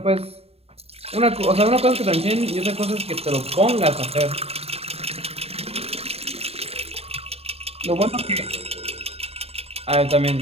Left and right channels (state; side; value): late; left; 0.29 ms